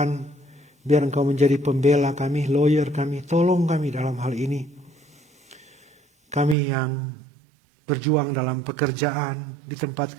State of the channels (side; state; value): left; drops out; at 6.6 s